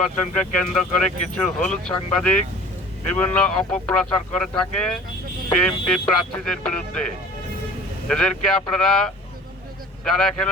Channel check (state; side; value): normal; both; correlation 0.45